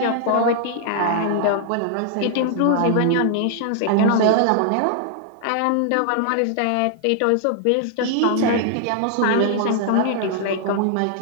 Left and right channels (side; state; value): both; different; correlation 0.00